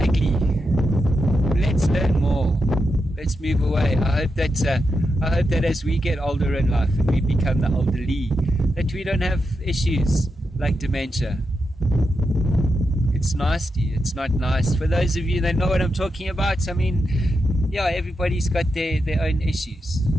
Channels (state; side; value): normal; both; correlation 0.87